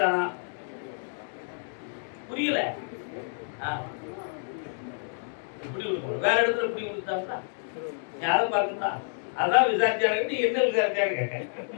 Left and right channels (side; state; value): right; silent; 59 dB below the other